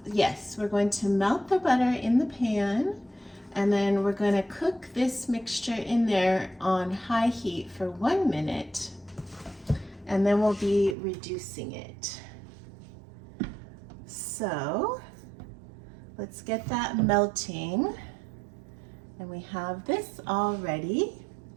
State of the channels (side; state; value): left; drops out; at 11.0 s